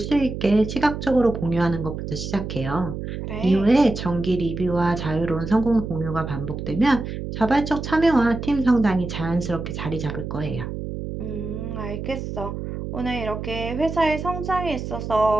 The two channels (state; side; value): noise; right; hum, 6 dB below the sound